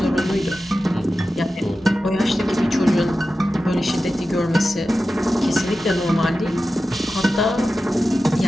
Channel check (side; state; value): both; normal; correlation 0.93